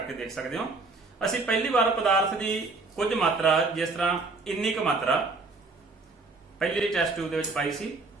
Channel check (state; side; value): quieter; left; 3.6 dB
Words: ਦੇਖ ਸਕਦੇ ਹੋ। ਅਸੀਂ ਪਹਿਲੀ ਵਾਰ ਪਦਾਰਥ ਦੀ ਕੁਝ ਮਾਤਰਾ, ਜਿਸ ਤਰ੍ਹਾਂ ਇੰਨੀ ਕੁ ਮਾਤਰਾ ਪਹਿਲੀ ਟੈਸਟ ਟਿਊਬ ਦੇ ਵਿੱਚ ਪਾਈ ਸੀ,